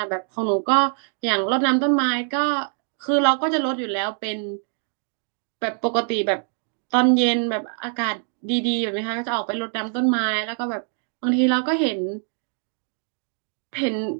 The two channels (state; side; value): silent; left; 63 dB below the other